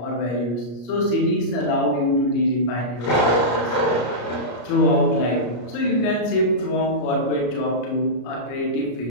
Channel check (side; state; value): right; late; 33 ms